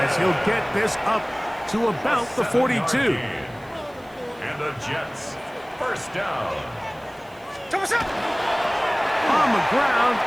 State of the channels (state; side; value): noise; right; hiss, 29 dB below the sound